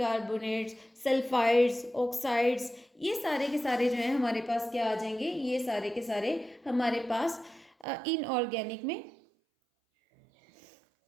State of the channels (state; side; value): drops out; left; at 7.9 s